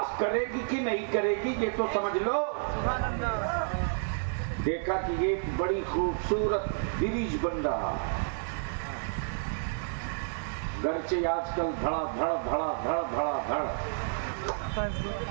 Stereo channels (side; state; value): left; silent; digital silence